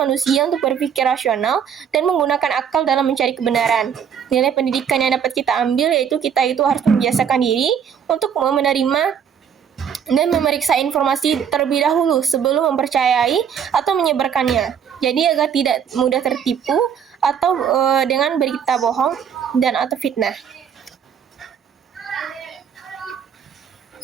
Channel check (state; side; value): quieter; left; 7.9 dB